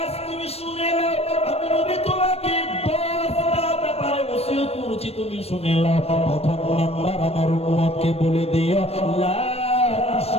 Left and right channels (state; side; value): late; right; 0.29 ms